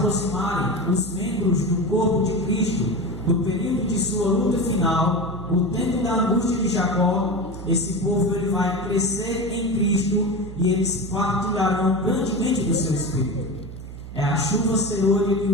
os membros do corpo de Cristo do período de sua luta final, o tempo da angústia de Jacó, esse povo ele vai crescer em Cristo e eles partilharão grandemente do seu Espírito. É a chuva serôdia que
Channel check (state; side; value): noise; right; hum, 12 dB below the sound